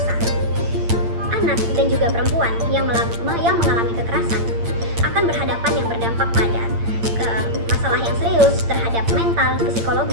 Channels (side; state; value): left; late; 8.8 ms